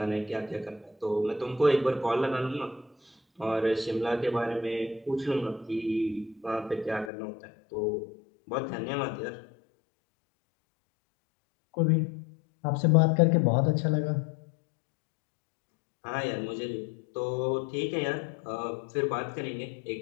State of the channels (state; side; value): drops out; right; at 7.1 s